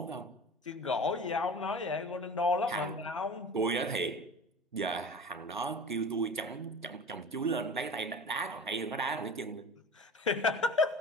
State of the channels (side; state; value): both; normal; correlation 0.36